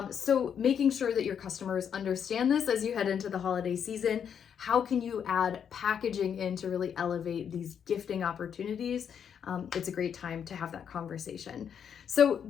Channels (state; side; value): quieter; right; 8.0 dB